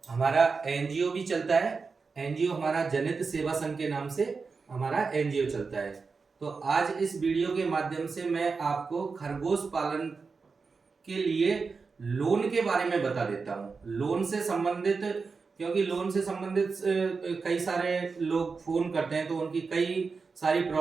हमारा एनजीओ भी चलता है। एनजीओ हमारा जनित सेवा संघ के नाम से हमारा एनजीओ चलता है। तो आज इस वीडियो के माध्यम से मैं आपको खरगोश पालन के लिए लोन के बारे में बता देता हूँ। लोन से संबंधित, क्योंकि लोन से संबंधित कई सारे लोग फोन करते हैं तो उनकी कई सारी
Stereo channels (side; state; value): left; quieter; 4.7 dB